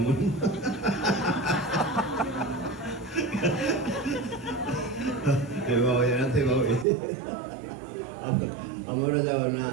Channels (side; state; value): left; drops out; at 6.9 s